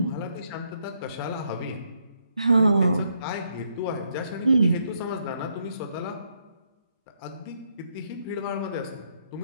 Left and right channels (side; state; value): both; inverted; correlation -0.75